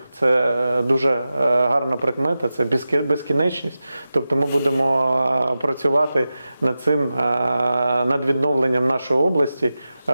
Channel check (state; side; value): inverted; both; correlation -0.93